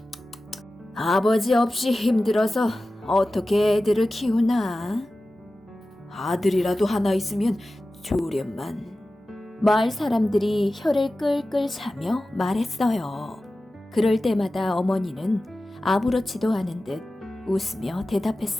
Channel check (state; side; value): normal; both; correlation 0.95